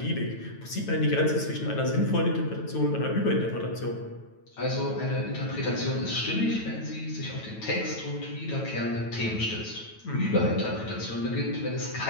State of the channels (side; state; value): right; late; 9.1 ms